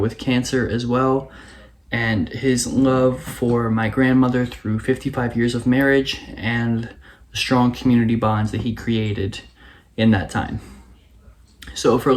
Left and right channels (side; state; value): both; identical; correlation 1.00